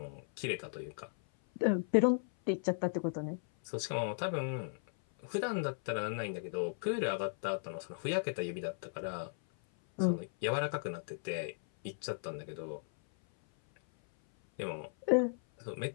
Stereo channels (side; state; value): right; silent; 54 dB below the other